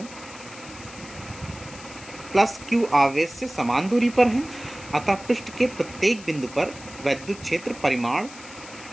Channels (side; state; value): left; noise; hiss, 17 dB below the sound